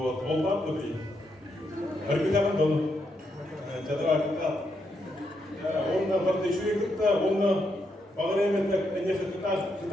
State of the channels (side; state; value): both; normal; correlation 0.80